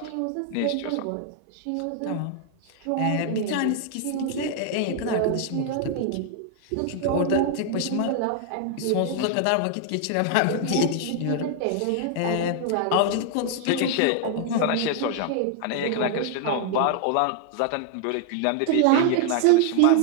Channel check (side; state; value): both; different; correlation 0.00